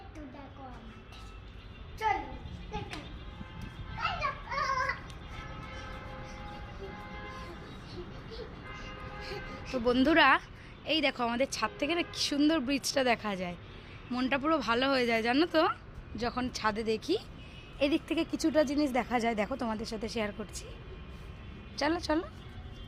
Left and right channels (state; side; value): identical; both; correlation 1.00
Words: দেখো আমাদের। চলো দেখাই। তো বন্ধুরা, এই দেখো আমাদের ছাদ থেকে না কি সুন্দর ব্রিজটা দেখা যায়। মনটা পুরো ভালো হয়ে যায় জানো তো, যখন ছাদে দেখি। এদিক থেকে কিছুটা জিনিস দেখা যায়, দেখো তোমাদের সাথে শেয়ার করছি। চলো চলো।